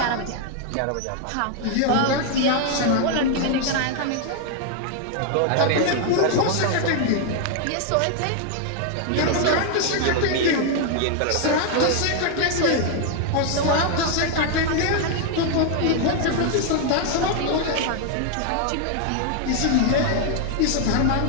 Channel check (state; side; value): different; both; correlation 0.00